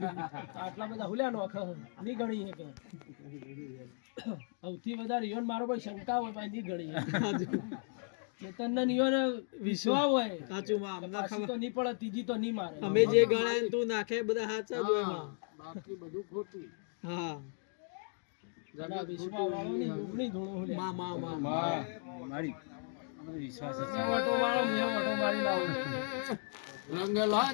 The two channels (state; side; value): silent; right; 54 dB below the other